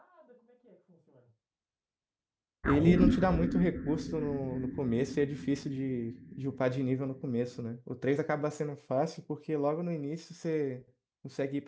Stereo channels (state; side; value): identical; both; correlation 1.00